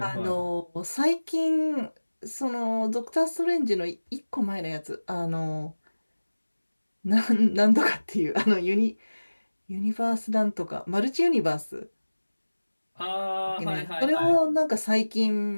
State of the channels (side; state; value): both; inverted; correlation -1.00